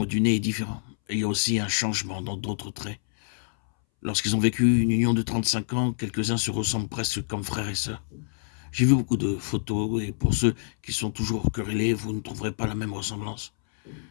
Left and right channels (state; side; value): silent; right; 60 dB below the other